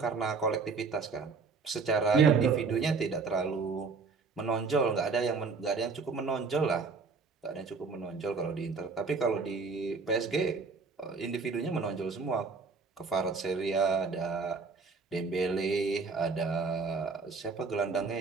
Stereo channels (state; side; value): quieter; left; 4.7 dB